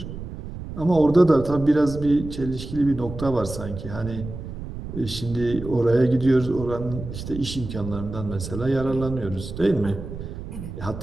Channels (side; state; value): right; noise; rumble, 10 dB below the sound